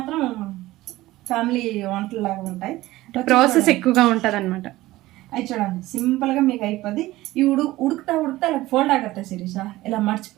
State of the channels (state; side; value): quieter; left; 17.5 dB